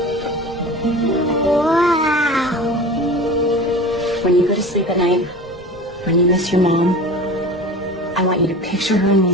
Wow. When you go to sleep at night, when you miss your mom, I want you to picture her in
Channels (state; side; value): normal; both; correlation 0.35